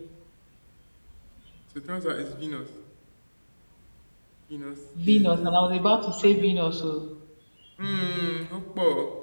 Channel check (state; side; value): inverted; both; correlation -1.00